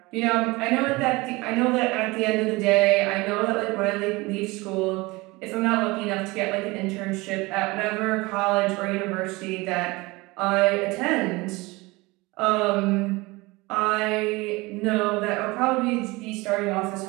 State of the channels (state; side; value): quieter; left; 22.9 dB